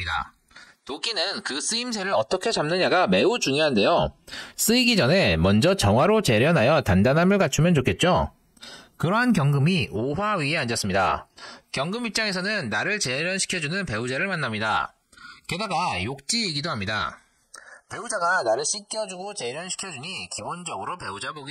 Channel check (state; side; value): identical; both; correlation 1.00